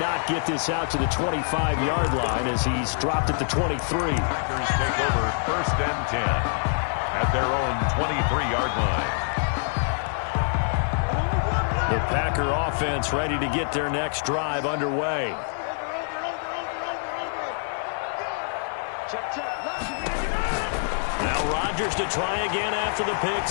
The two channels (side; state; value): right; silent; digital silence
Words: get this out to the 25-yard line as he's dropped at the 23. Packers take over 1st and 10 at their own 23-yard line. The Packer offense ready to get their next drive underway. Now Rodgers to try again after the pick